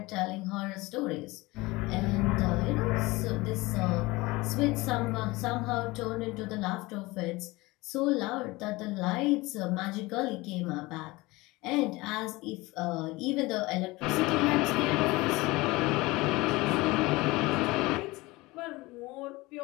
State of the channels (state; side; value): quieter; right; 21.7 dB